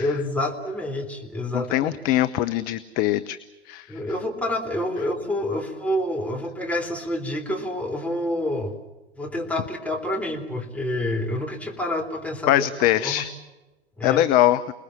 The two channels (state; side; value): quieter; right; 5.6 dB